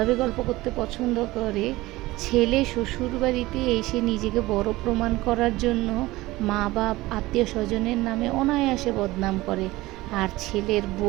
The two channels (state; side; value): quieter; left; 19.0 dB